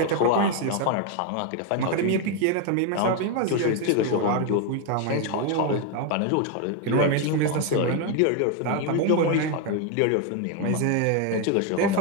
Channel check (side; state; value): both; different; correlation 0.01